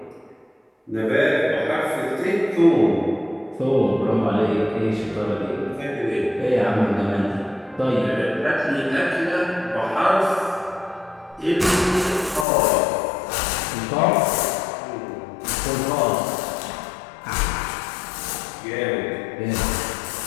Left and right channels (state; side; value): drops out; right; at 12.5 s